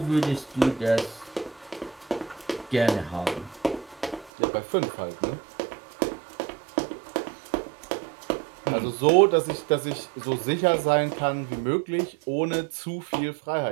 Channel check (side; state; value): left; drops out; at 4.3 s